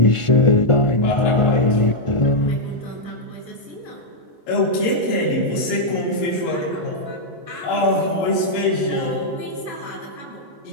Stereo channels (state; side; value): late; right; 1.4 ms